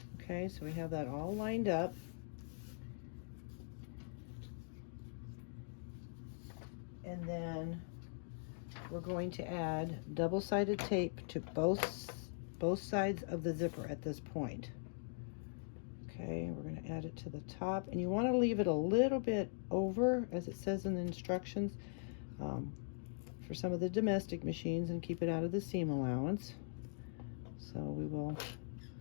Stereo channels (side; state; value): right; silent; digital silence